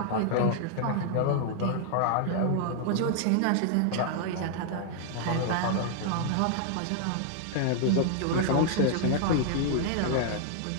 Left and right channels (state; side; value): different; both; correlation 0.00